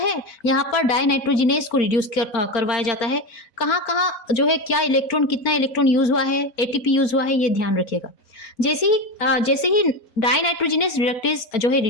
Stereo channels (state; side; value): late; right; 4.3 ms